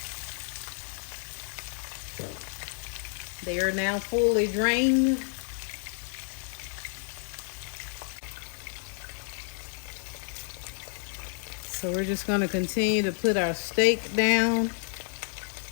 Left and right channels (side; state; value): right; silent; digital silence